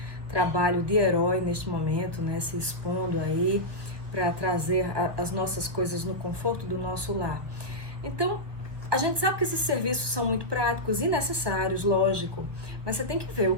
trabalho de herói neste momento, né? Se expondo aí para trazer as nossas coisas no conforto do nosso lar. Então, a gente sabe que esses serviços são muito práticos e necessários, lógico, mas você tem que ver o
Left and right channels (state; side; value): late; left; 1.2 ms